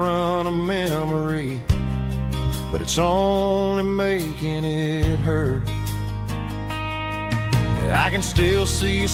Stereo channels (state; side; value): identical; both; correlation 1.00